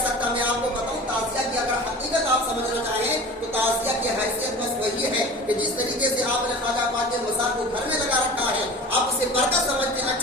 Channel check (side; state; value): both; normal; correlation 0.38